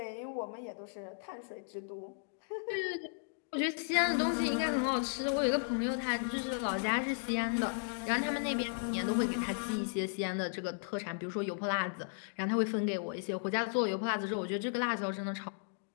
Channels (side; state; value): right; silent; digital silence